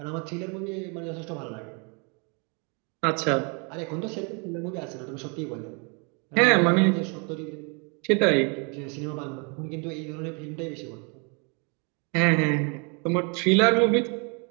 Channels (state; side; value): quieter; left; 34.3 dB